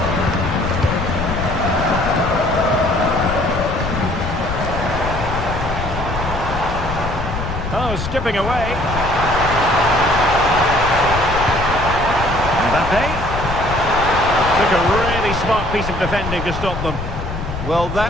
Oh, skipping away. Mbappe. Took a really smart piece of defending to stop them. Well,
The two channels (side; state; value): left; noise; rumble, 6 dB below the sound